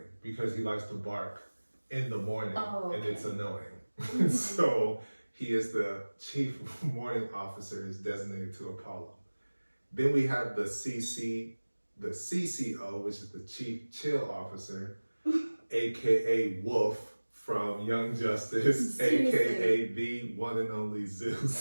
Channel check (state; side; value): inverted; both; correlation -1.00